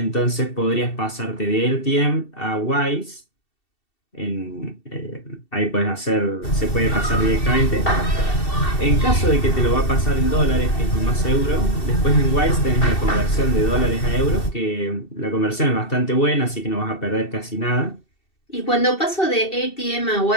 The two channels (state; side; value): late; right; 2.7 ms